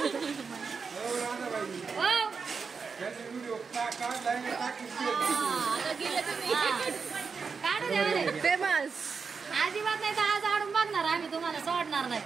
फेमस. अजिबात नाही तर आज आडून बघणार आम्ही तुम्हाला सोडणार नाही.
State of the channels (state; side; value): quieter; left; 5.3 dB